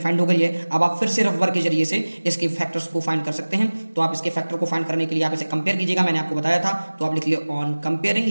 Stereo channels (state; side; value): inverted; both; correlation -1.00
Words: हो गई है। अब आप फिर से रफ वर्क के जरिए से इसके फैक्टर्स को फाइंड कर सकते हैं। तो आप इसके फैक्टर को फाइंड करने के लिए आप इसे कंपेयर कीजिएगा, मैंने आपको बताया था। तो आप लिख लिए ऑन कंपेयरिंग,